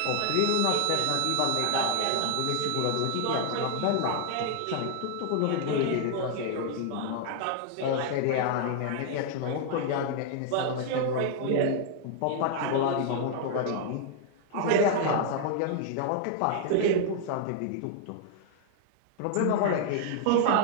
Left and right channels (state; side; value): different; both; correlation 0.00